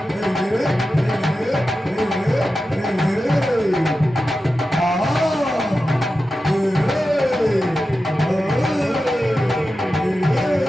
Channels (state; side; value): normal; both; correlation 0.92